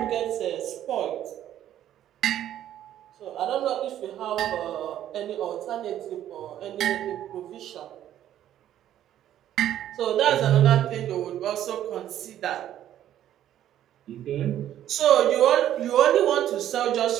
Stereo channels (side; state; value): left; quieter; 11.6 dB